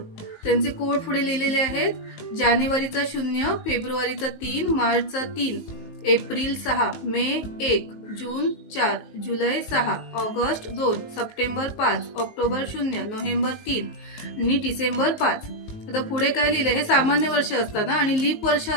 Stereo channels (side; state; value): right; late; 19 ms